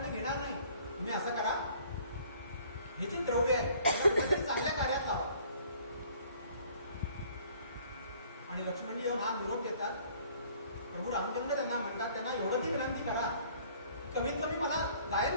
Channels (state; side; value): inverted; both; correlation -0.56